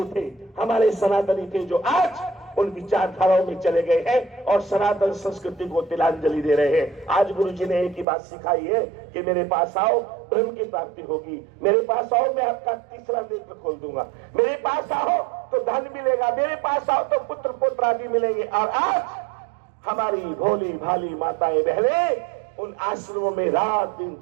थे, हमारे सनातनी थे, जो आज उन विचारधाराओं में चले गए हैं और सनातन संस्कृति को तिलांजलि दे रहे हैं। आज गुरु जी ने एक ही बात सिखाई है कि मेरे पास आओ, ब्रह्म की प्राप्ति होगी। मेरे पास आओ, मैं आपका तीसरा नेत्र खोल दूंगा। मेरे पास आओ तो धन मिलेगा, मेरे पास आओ तो पुत्र पुत्र आदि मिलेंगे। और आज हमारी भोली भाली माताएं बहनें उन आश्रमों में रात दिन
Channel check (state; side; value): drops out; left; at 8.1 s